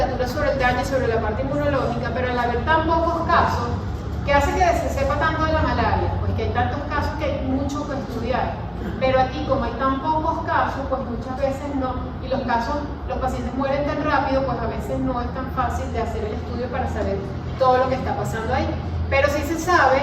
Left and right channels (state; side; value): identical; both; correlation 1.00